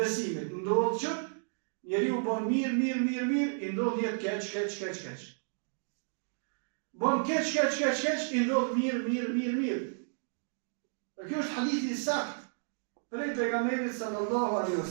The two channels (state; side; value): silent; left; digital silence